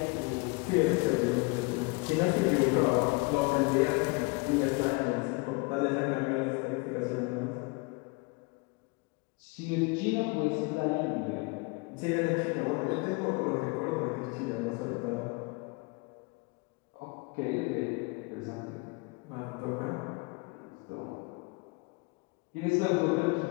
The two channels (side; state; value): right; quieter; 28.3 dB